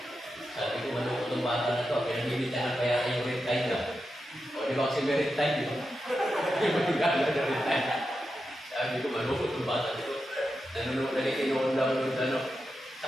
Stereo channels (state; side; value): normal; both; correlation 0.89